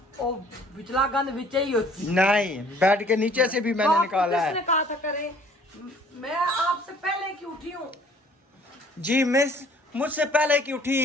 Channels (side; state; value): both; normal; correlation 0.56